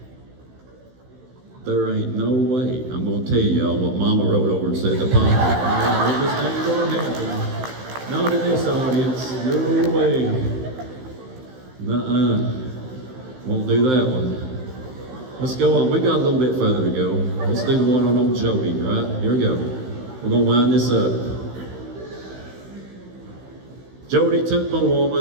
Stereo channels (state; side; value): late; left; 16 ms